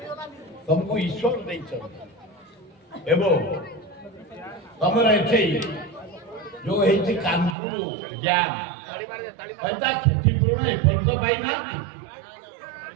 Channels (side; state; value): left; drops out; at 7.6 s